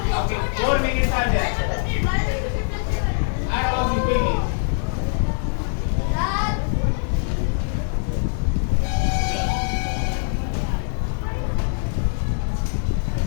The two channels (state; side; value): silent; right; digital silence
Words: Okay, 4 minutes are there. Add all of you quickly.